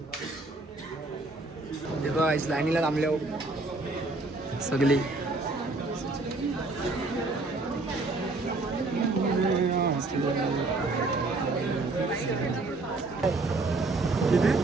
हे बघा लाईनीला थांबले हो सगळी.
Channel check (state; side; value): quieter; left; 3.2 dB